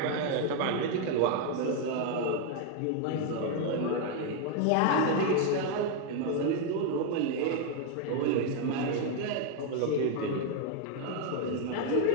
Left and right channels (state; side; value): different; both; correlation 0.01